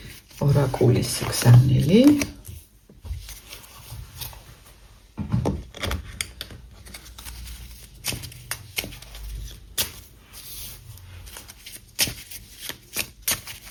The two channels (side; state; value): both; identical; correlation 1.00